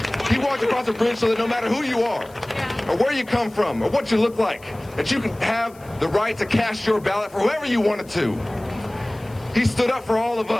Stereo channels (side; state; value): left; noise; hiss, 26 dB below the sound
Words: He walked across a bridge so that no matter who you are, or where you come from, or what you look like, that you can have the right to cast your ballot for whoever you wanted to. He stood up for all of